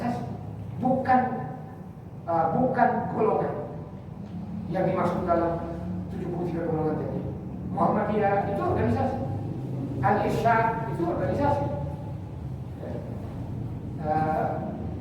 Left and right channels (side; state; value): both; identical; correlation 1.00